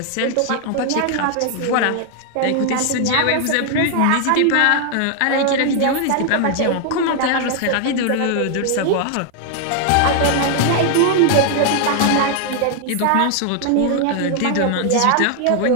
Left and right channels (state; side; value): different; both; correlation 0.00